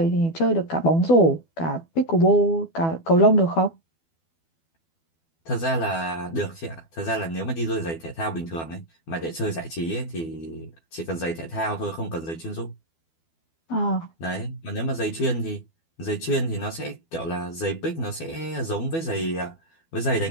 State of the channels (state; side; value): late; right; 12 ms